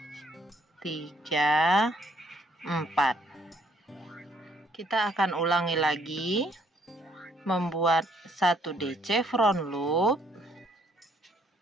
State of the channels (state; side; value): normal; both; correlation 0.67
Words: 3, 4. Kita akan ulangi lagi, membuat 1 DC front loop,